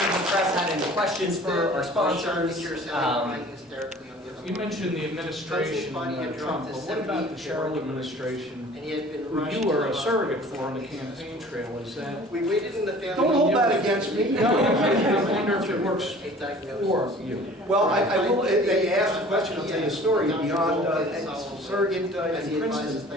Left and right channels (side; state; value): both; normal; correlation 0.47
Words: of the press had any questions for our sponsors. You mentioned the administration, Trump, but what about the Cheryl administration, who you were a surrogate for on the campaign trail? Is that... We waited in the family. Don't hold that against me. No, I wonder if it works for you. Well, I will, they asked a question, I'll tell you a story, beyond surrogate in Princeton,